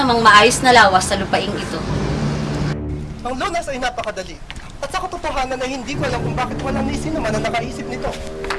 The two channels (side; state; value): both; identical; correlation 1.00